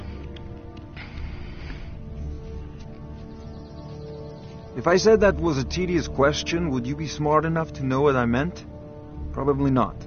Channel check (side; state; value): both; identical; correlation 1.00